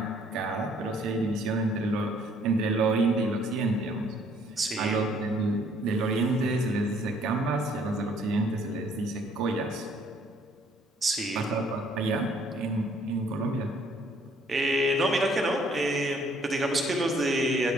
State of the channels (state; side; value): normal; both; correlation 0.62